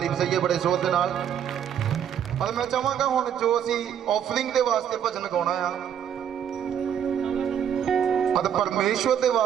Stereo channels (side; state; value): left; quieter; 9.0 dB